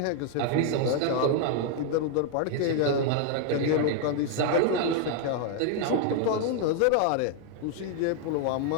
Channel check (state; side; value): different; both; correlation 0.00